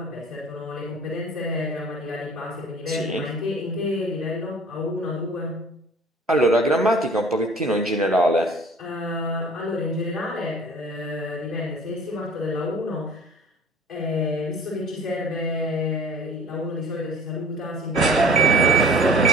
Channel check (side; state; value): both; normal; correlation 0.47